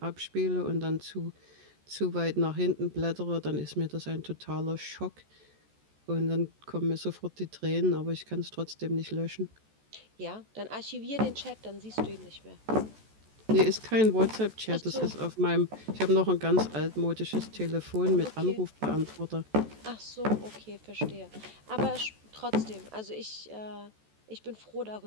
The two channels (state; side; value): late; left; 14 ms